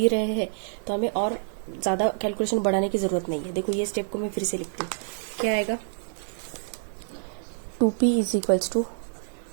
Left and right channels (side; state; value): left; silent; digital silence